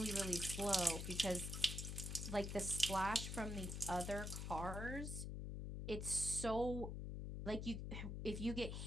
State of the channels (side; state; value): left; noise; hum, 4 dB below the sound